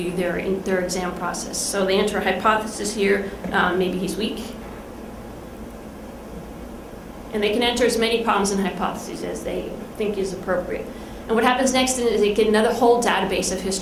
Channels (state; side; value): identical; both; correlation 1.00